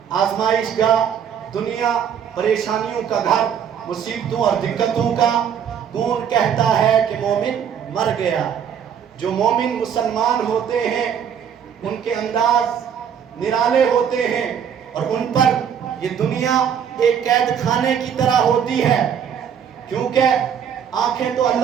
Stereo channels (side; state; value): left; quieter; 8.2 dB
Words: آزمائش کا، دنیا پریشانیوں کا گھر، مصیبتوں اور دقتوں کا۔ کون کہتا ہے کہ مومن مر گیا؟ جو مومن مسلمان ہوتے ہیں ان کے انداز نرالے ہوتے ہیں، اور ان پر یہ دنیا ایک قید خانے کی طرح ہوتی ہے، کیونکہ آنکھیں تو